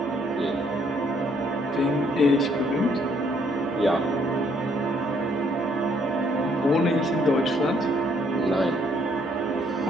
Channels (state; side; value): normal; both; correlation 0.68